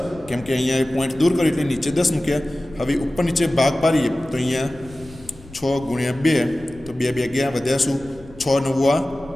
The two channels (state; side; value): noise; left; rumble, 21 dB below the sound